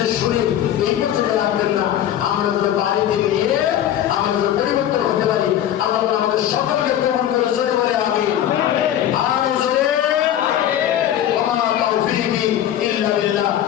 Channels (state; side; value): quieter; right; 11.3 dB